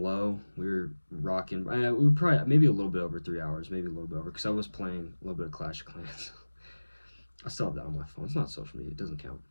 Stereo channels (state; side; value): inverted; both; correlation -1.00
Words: low. We were rocking. We were probably maybe a little bit over 3 hours, maybe a little bit over, because I was playing a little bit of Clash of Clans. I still have that on my phone. It's not social media. It doesn't count.